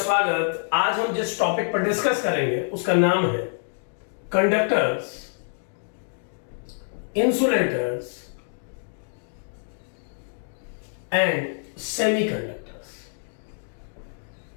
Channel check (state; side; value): silent; right; digital silence